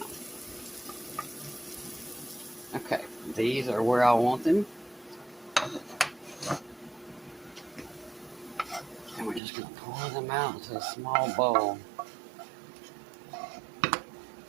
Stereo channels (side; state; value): left; drops out; at 9.4 s